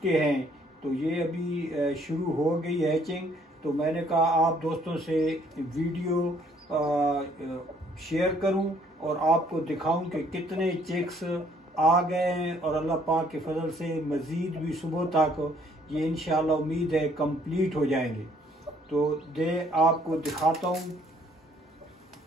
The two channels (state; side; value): normal; both; correlation 0.63